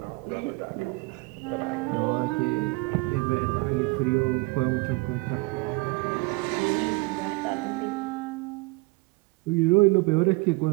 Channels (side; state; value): left; quieter; 25.6 dB